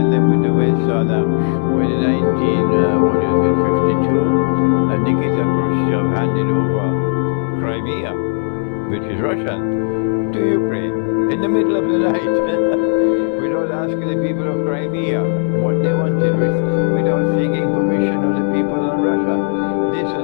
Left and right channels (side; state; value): right; silent; 66 dB below the other